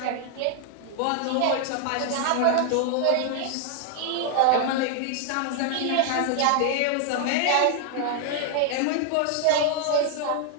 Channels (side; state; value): both; different; correlation 0.00